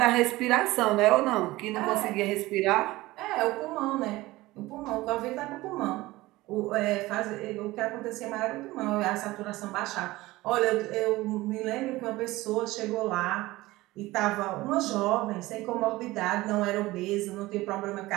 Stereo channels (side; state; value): left; quieter; 18.9 dB